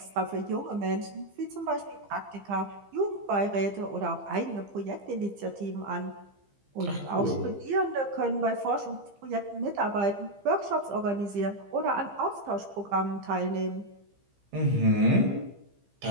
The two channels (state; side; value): late; left; 15 ms